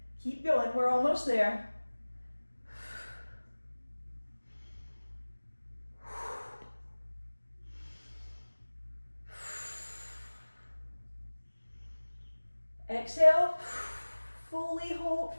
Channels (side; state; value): both; inverted; correlation -1.00